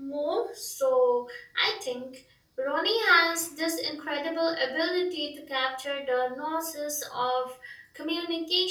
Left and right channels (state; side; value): identical; both; correlation 1.00